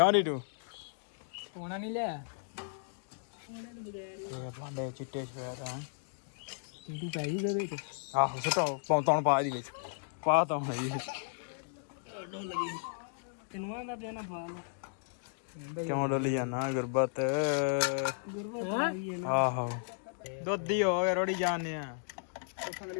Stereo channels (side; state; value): right; silent; digital silence